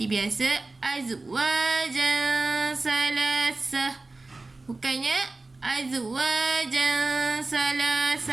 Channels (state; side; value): quieter; left; 3.3 dB